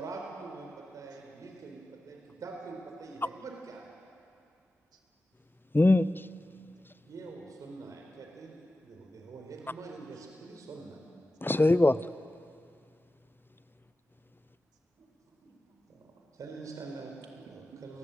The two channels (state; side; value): normal; both; correlation 0.94